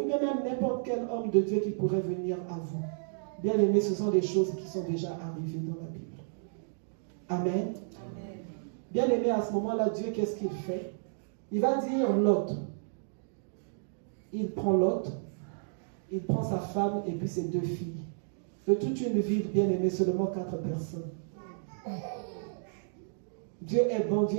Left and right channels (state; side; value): silent; left; digital silence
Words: bien même n'importe quel homme de Dieu qui pourrait venir à vous. Bien aimé, ce sont des choses qui sont déjà arrivées dans la Bible. Amen. Amen. Bien aimé, à ce moment-là, Dieu, qu'est-ce qu'il fait? Il va dire Lot. Il prend Lot, il prend sa femme et puis ses 2 filles. De toute une ville, bien aimé, seulement 4 personnes. Dieu est bon, Dieu